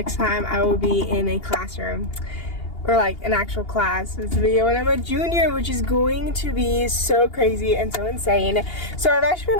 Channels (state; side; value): late; right; 2.8 ms